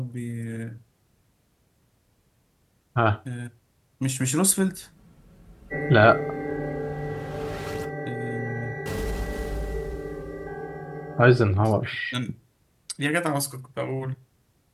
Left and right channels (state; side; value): identical; both; correlation 1.00